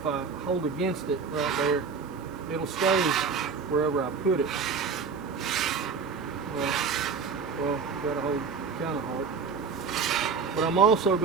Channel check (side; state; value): left; quieter; 5.4 dB